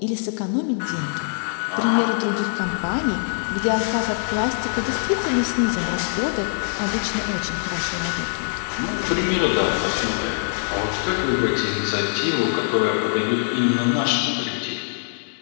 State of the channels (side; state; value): right; silent; 63 dB below the other